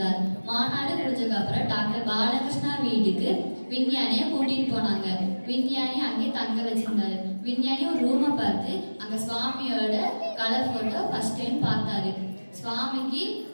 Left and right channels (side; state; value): both; inverted; correlation -1.00